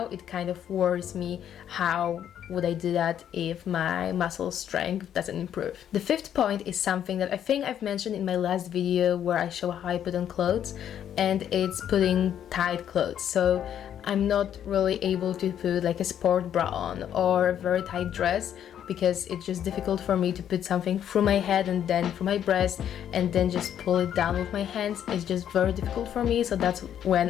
it kind of worries me, how would I do that if my muscle strength doesn't improve? The fifth point is something that I think I've mentioned in my last video where I show how I put on clothes, and it's putting tight clothes. So I'm not really able to put like a sport bra on or a very tight dress, because it's just difficult for me to put something through my head and then through my breast and then just pull it down with my hands. It's just very difficult for me, so that's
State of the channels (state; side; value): quieter; right; 9.8 dB